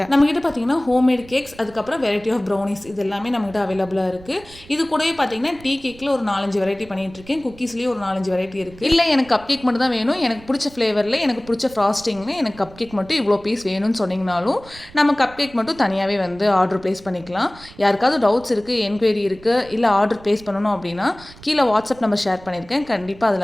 நம்மகிட்ட பார்த்தீங்கன்னா ஹோம்மேட் கேக்ஸ், அதுக்கப்புறம் வெரைட்டி ஆஃப் ப்ரௌனிஸ் இது எல்லாமே நம்மகிட்ட அவைலபிளாக இருக்குது. இது கூடவே பார்த்தீங்கன்னா டீ கேக்கில் ஒரு 4-5 வெரைட்டி பண்ணிகிட்டு இருக்கேன். குக்கீஸ்லேயே ஒரு 4-5 வெரைட்டி இருக்குது. இல்லை எனக்கு கப் கேக் மட்டும் தான் வேணும், எனக்கு பிடிச்ச ஃப்ளேவரில் எனக்கு பிடிச்ச ஃப்ராஸ்டிங்னு எனக்கு கப் கேக் மட்டும் இவ்வளோ பீஸ் வேணும்னு சொன்னீங்கனாலும் நம்ம கப் கேக் மட்டும் தனியாகவே வந்து ஆர்டர் ப்ளேஸ் பண்ணிக்கலாம். யாருக்காவது டவுட்ஸ் இருக்குது, என்கொயரி இருக்குது, இல்லை ஆர்டர் ப்ளேஸ் பண்ணணும் அப்படின்னா கீழே வாட்ஸ்அப் நம்பர் ஷேர் பண்ணியிருக்கேன். கண்டிப்பாக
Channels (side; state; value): right; noise; rumble, 21 dB below the sound